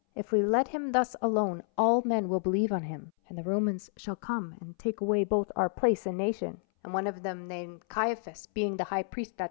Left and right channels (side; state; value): right; silent; 58 dB below the other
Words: If we let him thus alone, all men will believe on him, and the Romans shall come and take away both our place and nation. And one of them, named Caiaphas, being the high priest